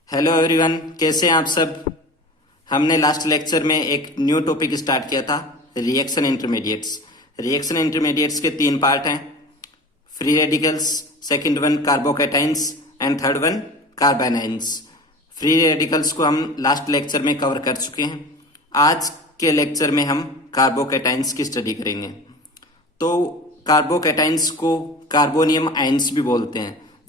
Hello everyone, कैसे हैं आप सब। हमने लास्ट लेक्चर में एक न्यू टॉपिक स्टार्ट किया था, रिएक्शन इंटरमीडिएट्स। रिएक्शन इंटरमीडिएट्स के तीन पार्ट हैं, free radicals, second one carbocations and third one carbanions. Free radicals को हम लास्ट लेक्चर में कवर कर चुके हैं। आज के लेक्चर में हम कार्बोकैटाइंस की स्टडी करेंगे। तो कार्बोकैटाइंस को कार्बोनियम आयंस भी बोलते हैं।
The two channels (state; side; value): normal; both; correlation 0.36